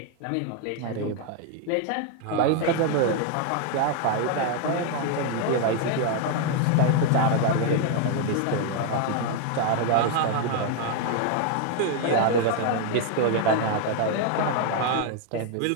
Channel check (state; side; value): different; both; correlation 0.01